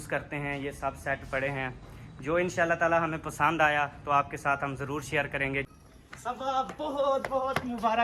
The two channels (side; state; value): both; identical; correlation 1.00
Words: करते हैं, ये सब सेट पड़े हैं। जो इंशाल्लाह ताला हमें पसंद आया तो आपके साथ हम ज़रूर शेयर करेंगे। सब बहुत बहुत